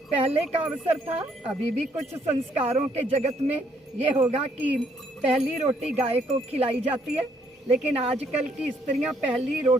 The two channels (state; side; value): normal; both; correlation 0.69